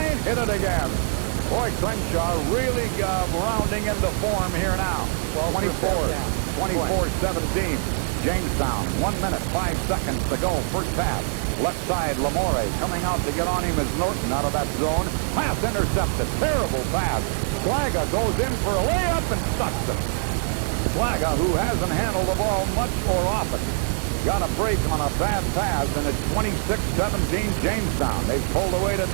Hit it again. Boy, Crenshaw really rounding into form here now. 24-17. Jamestown, 1 minute, 5 seconds to go. First pass. Left side, Lamore coming out to get on him as Norton out of that zone. Pass intercepted. Terrible pass. Slaga goes in for a layup and stucks it. Slaga, who hasn't handled the ball much or often, got a break on a bad pass, and it's 26-17 Jamestown. They've pulled away to a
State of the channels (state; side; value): silent; left; digital silence